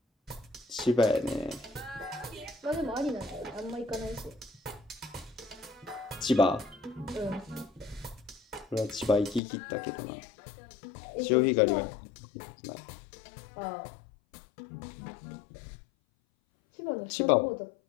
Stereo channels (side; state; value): right; drops out; at 9.4 s